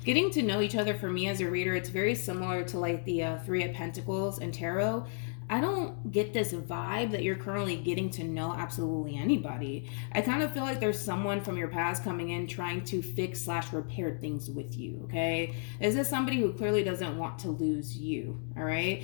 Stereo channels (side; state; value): right; silent; 56 dB below the other